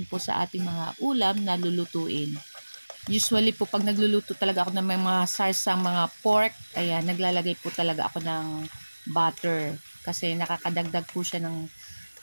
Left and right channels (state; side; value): inverted; both; correlation -1.00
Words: po sa ating mga ulam na lulutuin. Usually po, pag nagluluto talaga ako ng mga sarsang mga pork, ayan, naglalagay po talaga ako ng butter. Kasi nakakadagdag po siya ng